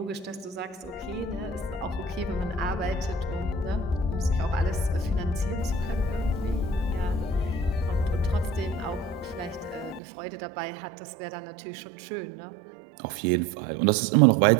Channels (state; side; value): drops out; left; at 10.0 s